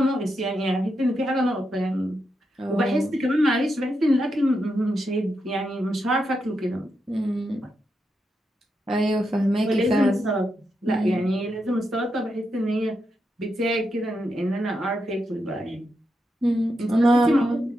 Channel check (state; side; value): normal; both; correlation 0.85